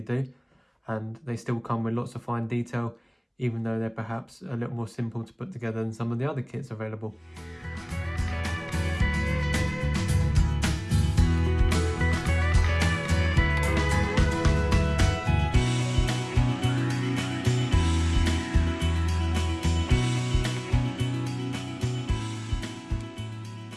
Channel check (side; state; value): both; identical; correlation 1.00